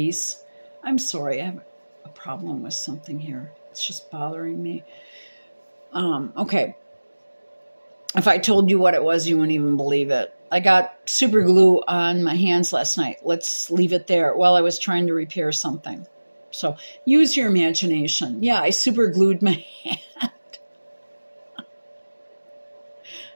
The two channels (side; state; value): both; inverted; correlation -1.00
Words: I'm sorry, I have a problem with something here. It's just bothering me. Okay. If I told you what it was, you wouldn't even believe it. I got super glue on my hands last night. Let's leave it there while I was trying to repair something. So use your imagination. Yeah, I super glued my hand.